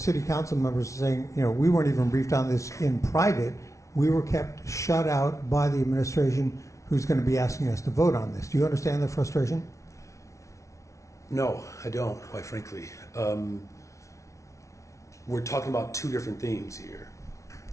council members are saying, we weren't even briefed on this in private. We were kept shut out by the administration, who's going to be asking us to vote on this. Do you understand the frustration? No, I don't, quite frankly. We're talking about two different things here.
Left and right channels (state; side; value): late; right; 0.14 ms